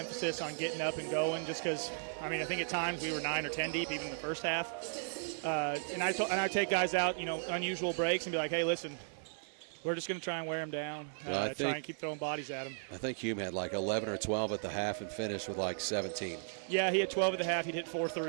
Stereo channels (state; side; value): silent; left; 54 dB below the other